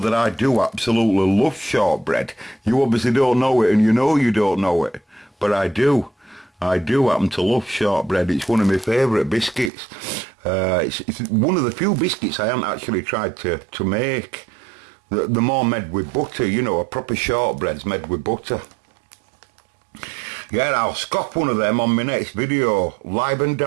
that I do absolutely love shortbread. You obviously don't know it, and you know you don't know it. But I do. I do happen to love shortbread. It's one of my favourite biscuits. It's one of the few biscuits I haven't actually tried to make. They're more made with butter, you know, a proper shortbread's made with butter. Yeah, I'll scop one of them on my next video. Live and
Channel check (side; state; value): left; drops out; at 9.7 s